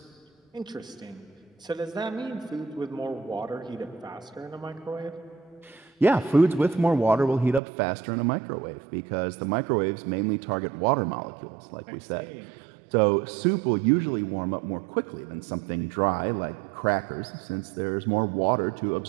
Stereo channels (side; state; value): left; drops out; at 7.6 s